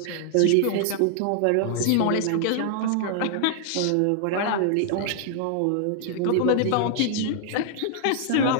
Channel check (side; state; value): both; different; correlation 0.00